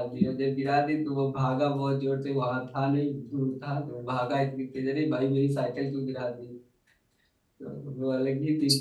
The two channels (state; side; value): identical; both; correlation 1.00